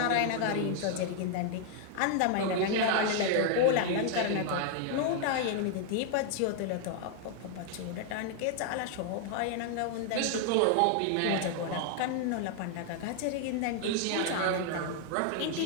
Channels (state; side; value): different; both; correlation 0.00